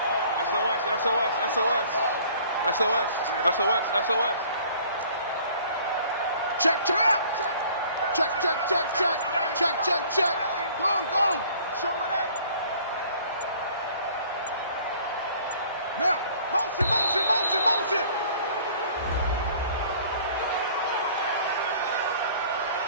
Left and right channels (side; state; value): both; inverted; correlation -0.53